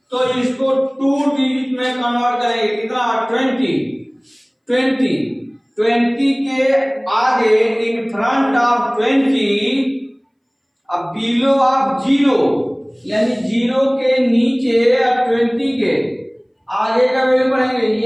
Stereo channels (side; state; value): both; identical; correlation 1.00